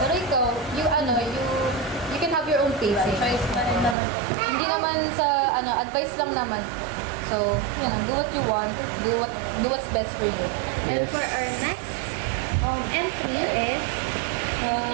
Pero ikaw, you can have your own pace. Choice na rin naman. Hindi naman sa, advice lang naman. So, do what you want. Do what's best for you. And for our next entry is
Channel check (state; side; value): drops out; left; at 4.0 s